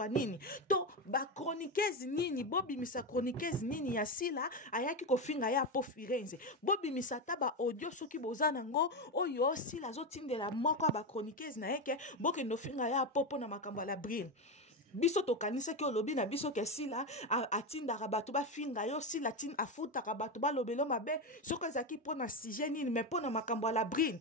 nini. To ba chroniqueuse nini bo bimisa chroniqueuse nini ya sila ayaki ko finga ya po firenze. Bo bimisa taba audio soki bozana ngo oyo sila zo tindela moko ba chroniqueuse na eke boke no finga ya popo na makambo la brine. Biso to kanisa ki olobi na biso ke sila atinda rabatu ba finga yo sila tin afuta rabatu ba lobelo mabe soko ezaki pona sujet nini mais pona makambo la brine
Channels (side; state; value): both; normal; correlation 0.13